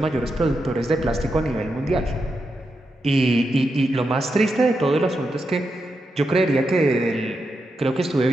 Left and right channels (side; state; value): both; normal; correlation 0.86